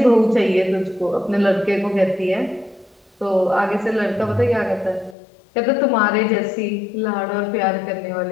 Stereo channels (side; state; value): right; drops out; at 5.2 s